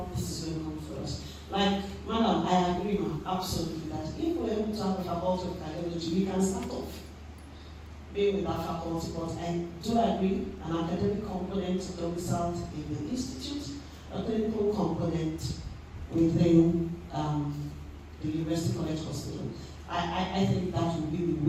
this is going to come for us. Like, madam, I agree, ma'am, absolutely, that if we're able to have a faculty of cardiology, we can start off being with that faculty, but I do agree, an academic component domiciled in the institute, a clinical component within the University College Hospital. I think that will be the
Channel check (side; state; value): both; identical; correlation 1.00